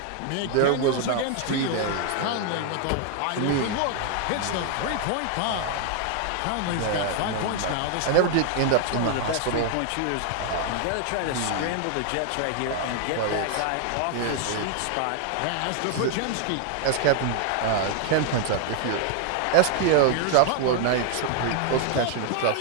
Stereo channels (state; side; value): different; both; correlation 0.00